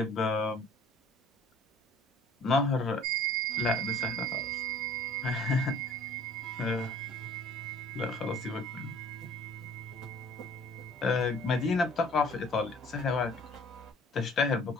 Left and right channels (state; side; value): normal; both; correlation 0.51